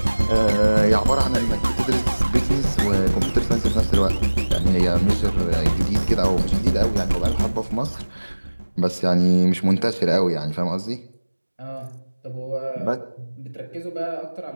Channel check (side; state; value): both; inverted; correlation -1.00